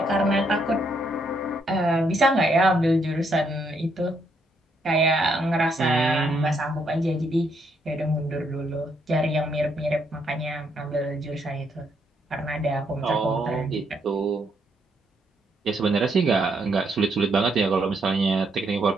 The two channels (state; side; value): normal; both; correlation 0.74